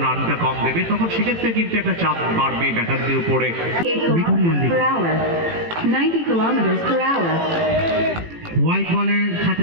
রানটা কম দেবে তখন সেক্ষেত্রে কিন্তু একটা চাপ বাড়বে ব্যাটারদের উপরে। 8 kilometers per hour. 90 kilometers per hour. White বলের সাথে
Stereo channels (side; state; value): left; late; 18 ms